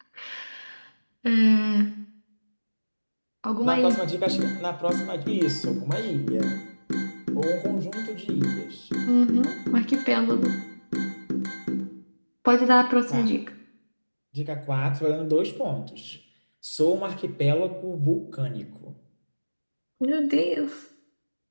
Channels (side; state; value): both; inverted; correlation -1.00